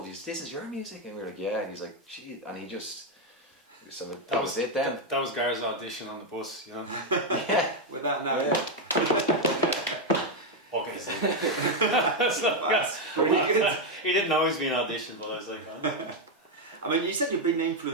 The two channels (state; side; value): normal; both; correlation 0.04